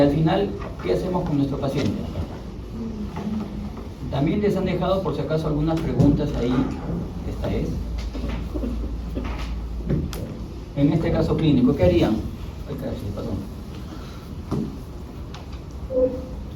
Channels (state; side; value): identical; both; correlation 1.00